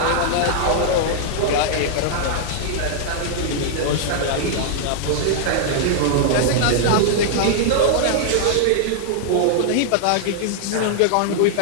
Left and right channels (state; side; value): different; both; correlation -0.01